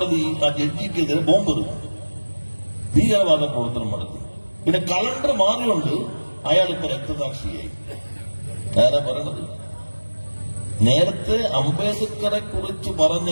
ആ ജഡ്ജിക്കെതിരെ ബോംബെറിഞ്ഞു, ഭീകരവാദ പ്രവർത്തനം നടത്തി. പിന്നെ കലണ്ടർ മാറിയുണ്ട് അയാളിപ്പോ രക്തസാക്ഷിയായി. ആരാ പറയണത്? നേരത്തെ അംബേദ്കറെ കുറിച്ച്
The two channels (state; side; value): inverted; both; correlation -1.00